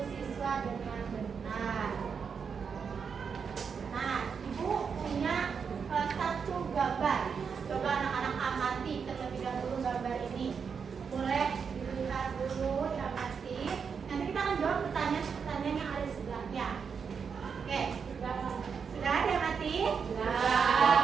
siswa dengan benar. Nah, Ibu punya satu gambar. Coba anak-anak amati terlebih dahulu gambar ini. Boleh dilihat dulu, diamati. Nanti kita akan jawab pertanyaan-pertanyaan yang ada di sebelahnya. Oke, sudah diamati? Sudah.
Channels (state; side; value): quieter; left; 6.2 dB